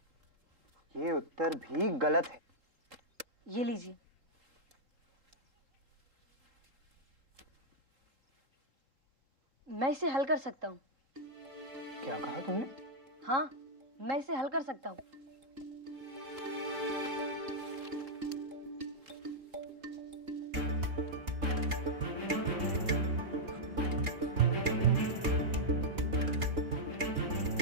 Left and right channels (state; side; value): late; left; 3.8 ms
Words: ये उत्तर भी गलत है। ये लीजिए। मैं इसे हल कर सकता हूँ। क्या कहा तुमने? हाँ, मैं इसे हल कर सकता हूँ।